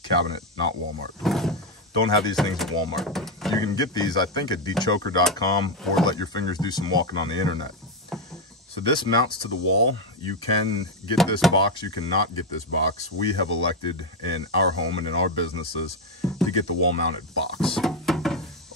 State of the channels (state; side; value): normal; both; correlation 0.06